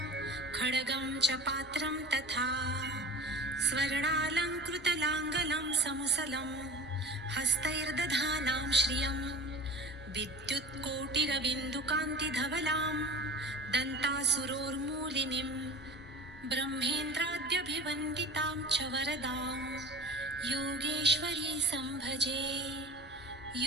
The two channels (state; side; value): normal; both; correlation 0.37